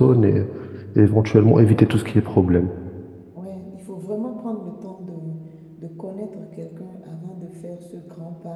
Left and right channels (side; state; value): both; identical; correlation 1.00